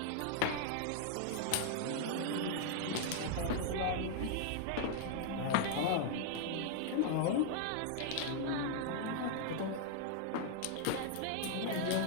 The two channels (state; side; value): different; both; correlation 0.00